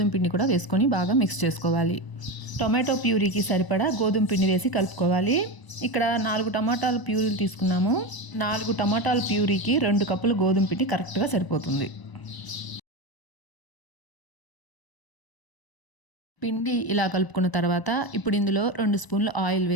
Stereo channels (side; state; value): right; late; 1.0 ms